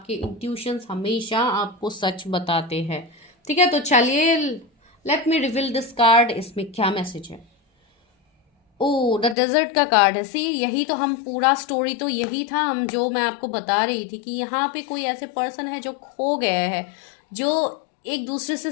इंट्यूशंस हमेशा आपको सच बताते हैं, ठीक है। तो चलिए let me reveal this card, इसमें क्या मैसेज है। ओ, द डेजर्ट का कार्ड है। सी, यही तो हम पूरा स्टोरी तो यही था, हम जो मैं आपको बता रही थी कि यहाँ पे कोई ऐसे पर्सन है जो खो गए हैं, जो एक दूसरे से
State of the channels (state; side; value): drops out; right; at 9.3 s